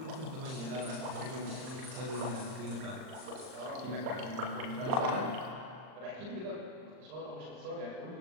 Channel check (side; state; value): left; late; 39 ms